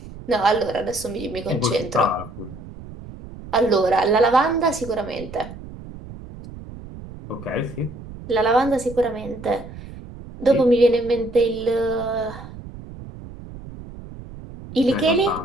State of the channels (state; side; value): noise; right; rumble, 15 dB below the sound